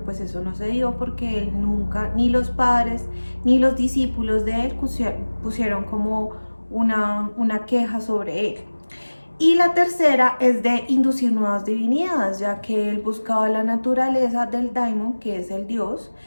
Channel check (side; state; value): both; inverted; correlation -1.00